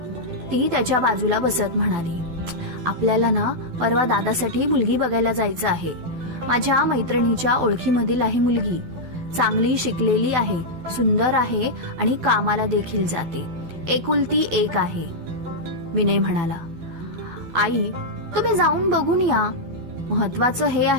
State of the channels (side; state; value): left; late; 12 ms